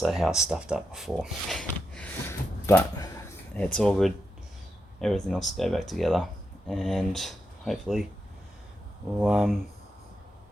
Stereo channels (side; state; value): both; normal; correlation 0.85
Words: how I stuffed up before. But it's all good. Everything else will go back together, and hopefully I'll